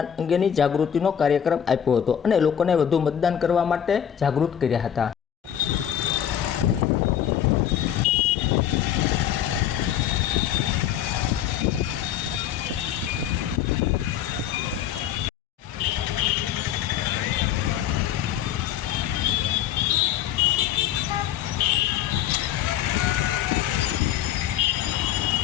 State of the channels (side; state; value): right; quieter; 9.9 dB